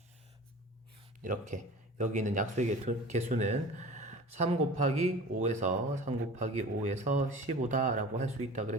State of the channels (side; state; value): both; normal; correlation 0.39